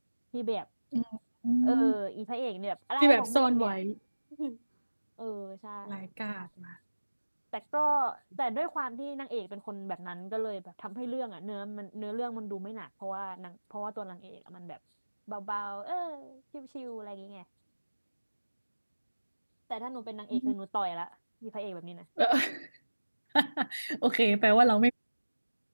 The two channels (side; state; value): both; inverted; correlation -1.00